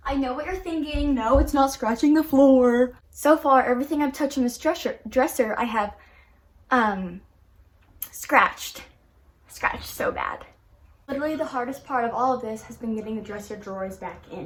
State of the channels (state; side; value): identical; both; correlation 1.00